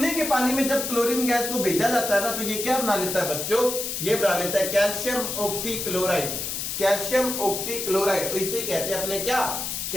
के पानी में जब क्लोरीन गैस को भेजा जाता है ना, तो ये क्या बना लेता है बच्चों? ये बना लेता है कैल्शियम ऑक्सीक्लोराइड। कैल्शियम ऑक्सीक्लोराइड, इसे कहते हैं अपने क्या?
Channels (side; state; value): left; noise; hiss, 3 dB below the sound